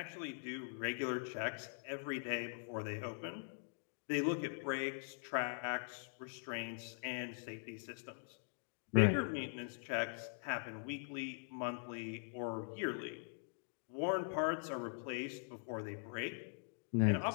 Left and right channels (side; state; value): right; silent; digital silence